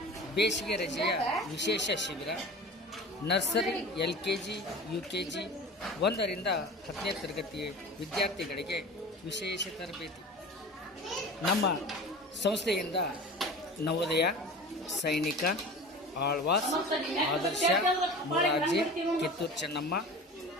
ಬೇಸಿಗೆ ರಜೆಯ ವಿಶೇಷ ಶಿಬಿರ. ನರ್ಸರಿ, LKG, UKG 1ರಿಂದ 10ನೇ ತರಗತಿ ವಿದ್ಯಾರ್ಥಿಗಳಿಗೆ ವಿಶೇಷ ತರಬೇತಿ. ನಮ್ಮ ಸಂಸ್ಥೆಯಿಂದ ನವೋದಯ, ಸೈನಿಕ, ಆಳ್ವಾಸ್, ಆದರ್ಶ, ಮೊರಾರ್ಜಿ, ಕಿತ್ತೂರು ಚೆನ್ನಮ್ಮ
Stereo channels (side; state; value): both; normal; correlation 0.36